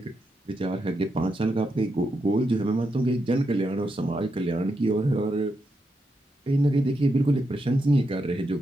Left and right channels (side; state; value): both; normal; correlation 0.84